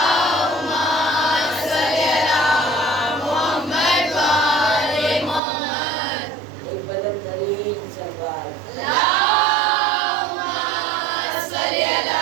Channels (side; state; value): left; drops out; at 5.4 s